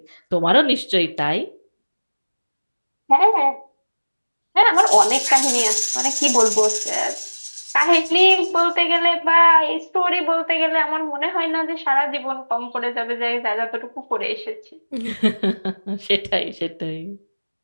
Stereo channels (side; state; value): both; inverted; correlation -1.00